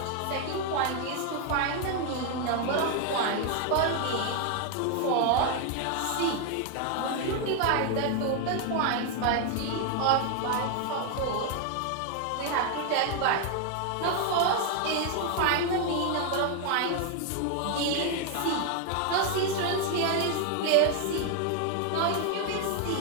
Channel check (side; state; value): both; different; correlation 0.00